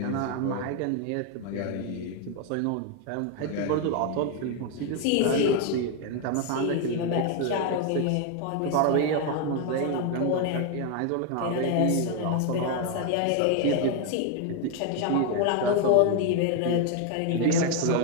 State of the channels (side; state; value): both; different; correlation 0.01